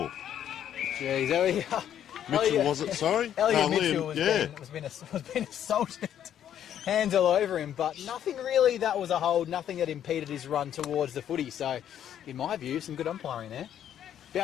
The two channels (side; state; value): right; quieter; 10.1 dB